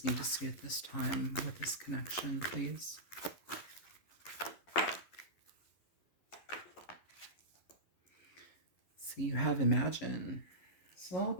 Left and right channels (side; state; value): right; late; 11 ms